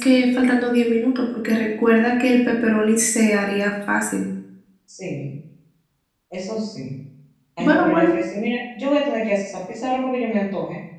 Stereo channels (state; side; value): identical; both; correlation 1.00